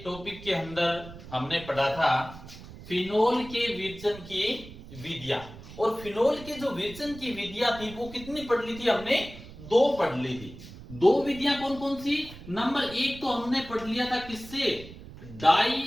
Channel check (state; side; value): noise; right; rumble, 15 dB below the sound